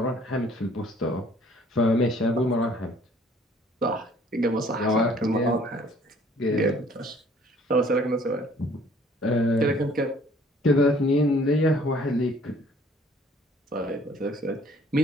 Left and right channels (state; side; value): normal; both; correlation 0.57